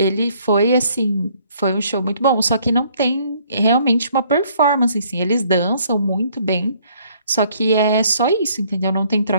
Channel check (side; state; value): both; inverted; correlation -0.63